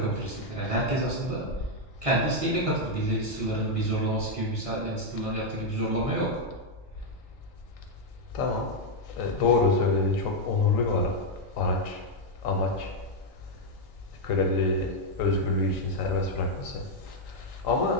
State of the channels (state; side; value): normal; both; correlation 0.00